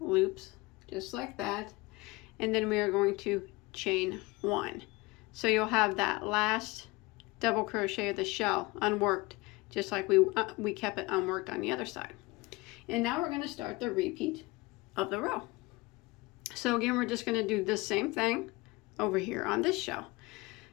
loops just like that, and then we are going to chain 1. So you'll have that last double crochet of the shell unworked, just like we kept it unworked on the other side. And now we're going to start the repeat of the row. So again, we're just going to do the same thing over here on this shell.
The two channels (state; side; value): quieter; right; 22.9 dB